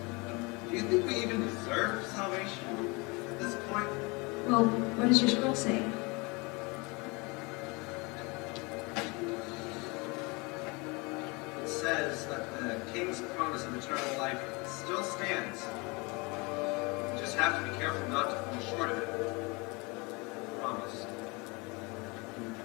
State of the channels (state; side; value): quieter; right; 27.5 dB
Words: Do you think we even deserve salvation at this point? Well, what does your scroll say? It says that the king's promise of eternal life still stands. You just have to be careful not to fall short of it. Promise. He